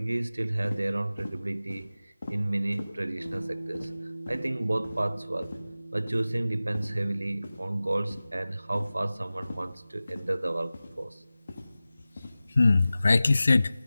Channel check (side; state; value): both; inverted; correlation -0.96